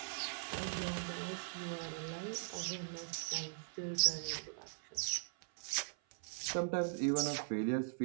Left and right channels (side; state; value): left; silent; 51 dB below the other